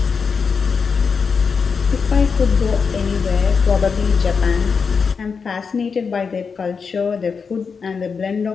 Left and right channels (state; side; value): quieter; right; 5.5 dB